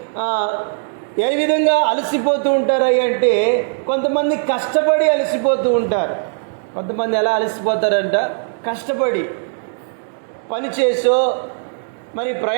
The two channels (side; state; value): left; silent; 67 dB below the other